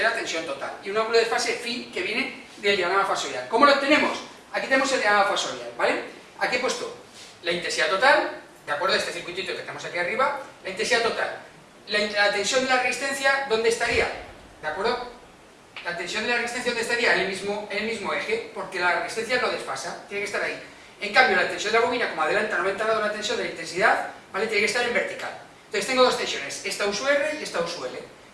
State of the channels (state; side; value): identical; both; correlation 1.00